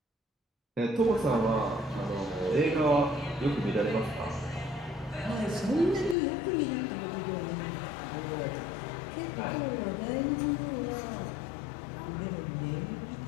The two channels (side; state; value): right; drops out; at 6.2 s